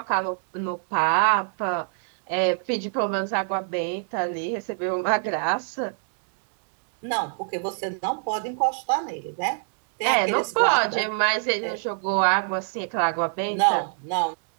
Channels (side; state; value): left; silent; digital silence